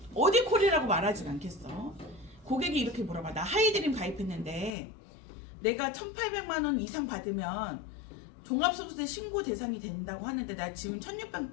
어디 콜이라고 말하진 않겠어. 고객이 이렇게 물어봐. 나 하이드림 가입했는데 내가 1,800만 원 이상 받으면 종합소득세 신고 대상이 된다고 하는데 나 지금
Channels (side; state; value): right; drops out; at 4.7 s